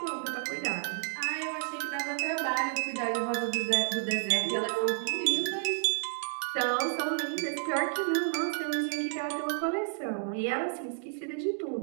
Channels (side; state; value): left; silent; digital silence